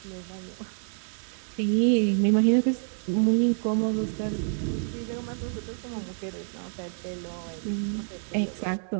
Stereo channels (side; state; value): left; silent; 59 dB below the other